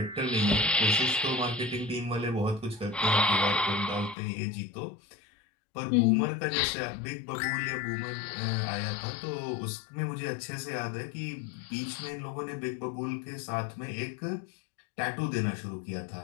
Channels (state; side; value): drops out; right; at 4.2 s